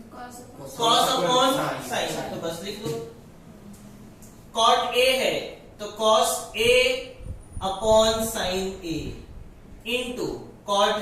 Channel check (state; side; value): identical; both; correlation 1.00